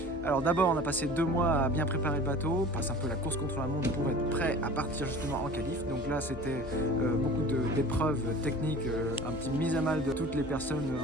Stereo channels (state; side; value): normal; both; correlation 0.42